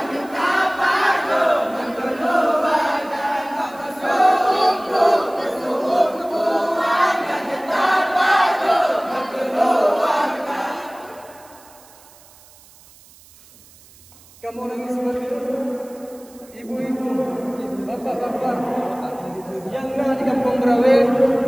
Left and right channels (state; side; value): noise; right; hiss, 25 dB below the sound